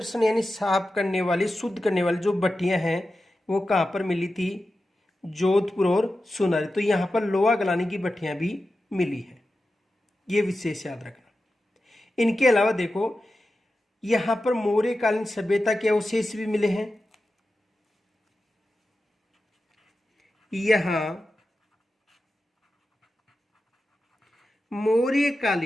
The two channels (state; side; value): normal; both; correlation 0.92